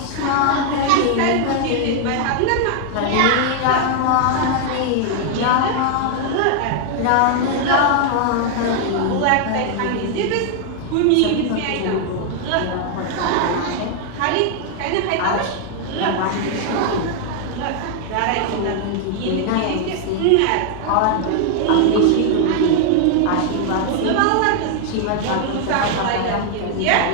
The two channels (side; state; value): both; different; correlation 0.00